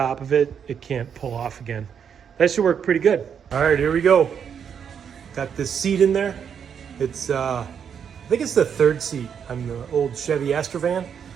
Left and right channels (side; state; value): left; quieter; 7.6 dB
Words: of it, it can't pull off again. That should work pretty good. All right, here we go. Got this seat in there. It's, I think it's the third seat on the old Chevy Astrovan.